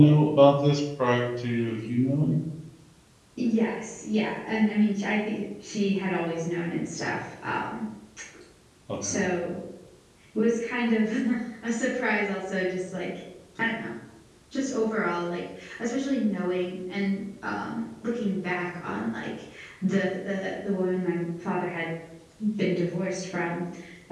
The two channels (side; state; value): both; identical; correlation 1.00